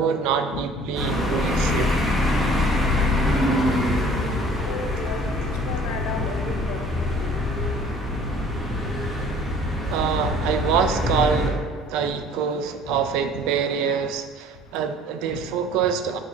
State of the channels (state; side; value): normal; both; correlation 0.51